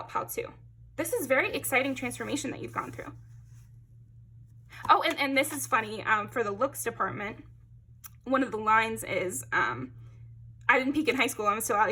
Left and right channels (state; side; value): identical; both; correlation 1.00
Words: Pal 2. This is very exciting transformation that you've gone through. Oh, and this is funny. For the looks department, one of the lines is, I didn't peak in high school. I'm still out